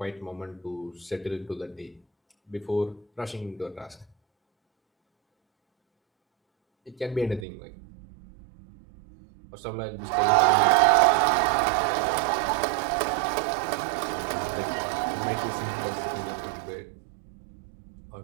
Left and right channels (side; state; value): left; drops out; at 7.5 s